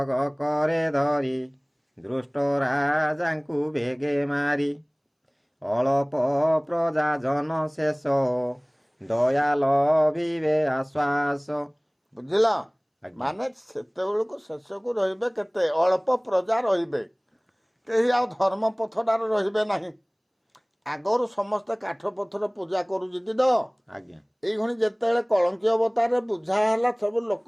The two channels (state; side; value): identical; both; correlation 1.00